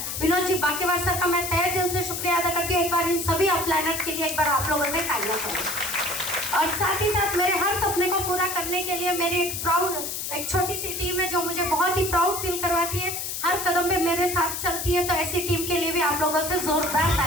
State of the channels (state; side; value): noise; left; hiss, 4 dB below the sound